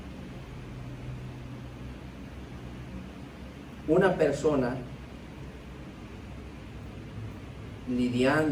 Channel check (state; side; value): identical; both; correlation 1.00